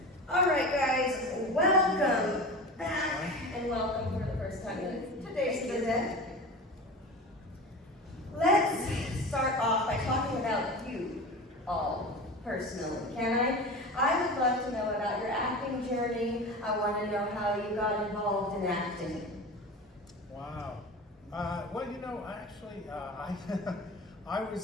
All right, guys, welcome back and welcome for the first time in today's visit. Let's start off by talking about you all personally, can I? I would love to know about your acting journey. I want to know how you got involved in acting. Wow. Well, you know, actually, I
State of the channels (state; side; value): normal; both; correlation 0.31